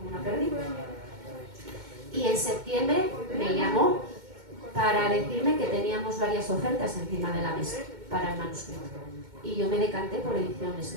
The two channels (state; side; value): late; left; 2.2 ms